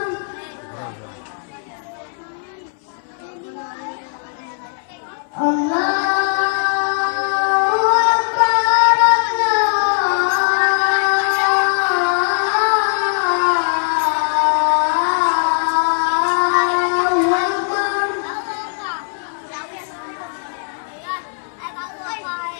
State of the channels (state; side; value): silent; right; 57 dB below the other